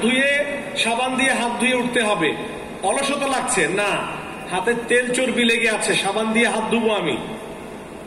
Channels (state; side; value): identical; both; correlation 1.00